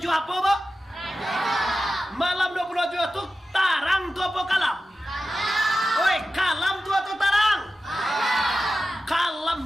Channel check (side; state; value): both; normal; correlation 0.93